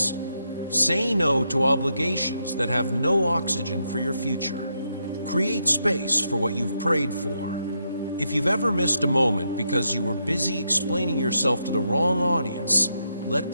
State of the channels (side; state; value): both; inverted; correlation -0.81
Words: Say no to obligations that have no oxygen for your future. Create space for what you've prayed for. If you've ever missed a moment because you were busy explaining yourself to the wrong audience, let